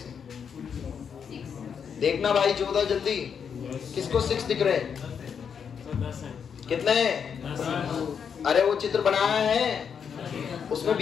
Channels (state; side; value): quieter; right; 7.1 dB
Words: देखना भाई 14 जल्दी। किसको 6 दिख रहे हैं? कितने? अरे वो चित्र बनाया है उसमें